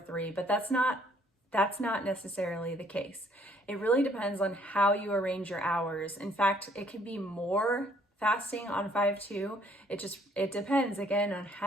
but that's not necessarily the case. It really depends on how you arrange your hours. In fact, it can be more fasting on 5-2. It depends again on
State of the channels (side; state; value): both; normal; correlation 0.63